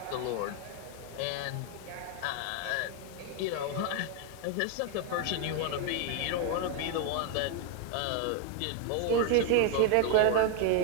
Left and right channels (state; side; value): different; both; correlation 0.01